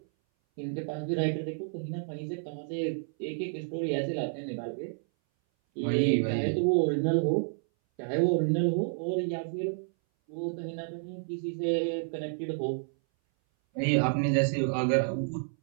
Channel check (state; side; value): silent; left; 58 dB below the other